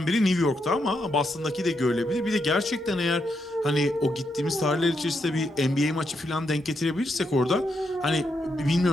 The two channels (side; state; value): both; normal; correlation 0.81